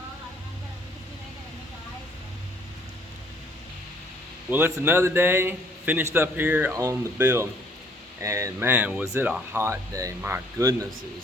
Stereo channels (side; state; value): both; normal; correlation 0.61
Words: Well, it's another day. Finished up here on the build. And man, was it a hot day. My goodness, it